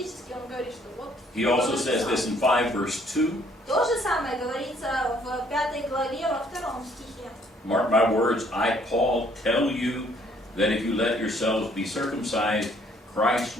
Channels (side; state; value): both; normal; correlation 0.63